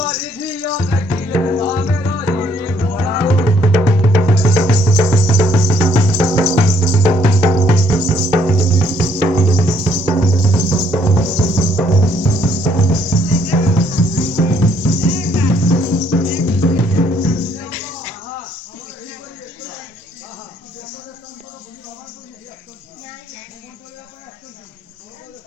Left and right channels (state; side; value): normal; both; correlation 0.67